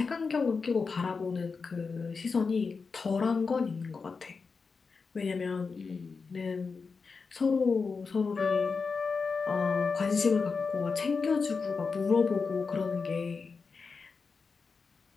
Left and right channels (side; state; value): right; quieter; 4.8 dB